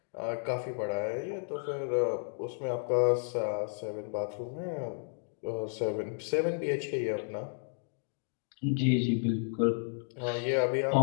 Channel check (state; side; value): silent; right; digital silence